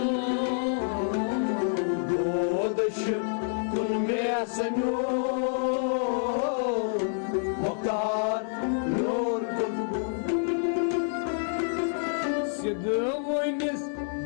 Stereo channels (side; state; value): right; silent; 58 dB below the other